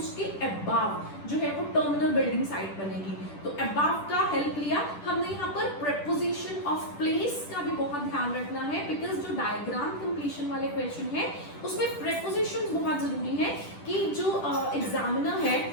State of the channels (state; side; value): late; right; 10 ms